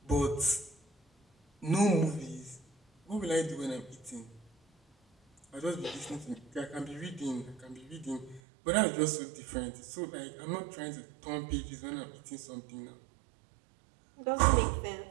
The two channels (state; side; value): drops out; left; at 8.4 s